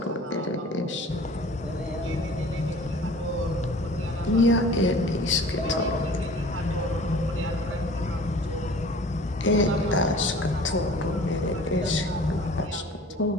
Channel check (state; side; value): normal; both; correlation 0.46